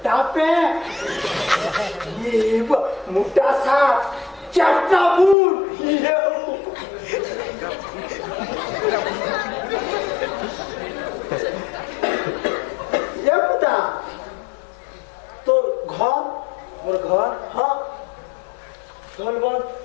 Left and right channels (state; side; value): drops out; right; at 5.4 s